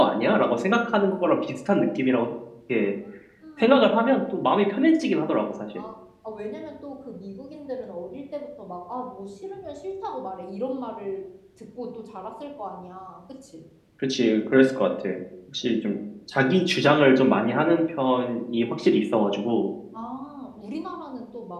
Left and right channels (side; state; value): both; identical; correlation 1.00